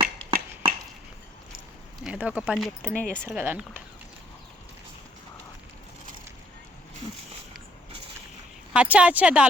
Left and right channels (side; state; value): both; normal; correlation 0.67